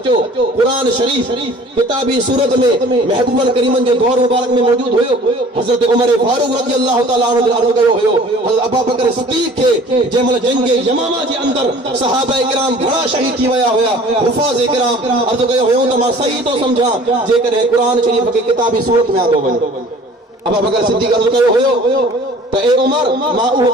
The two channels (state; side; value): normal; both; correlation 0.48